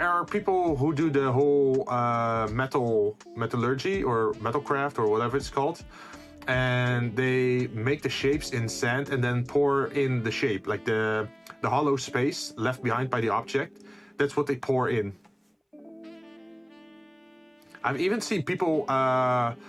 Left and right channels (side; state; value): both; identical; correlation 1.00